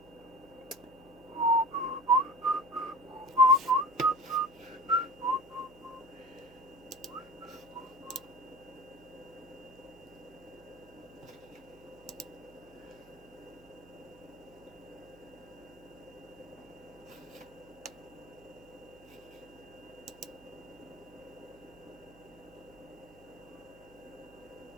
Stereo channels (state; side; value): noise; right; hum, 23 dB below the sound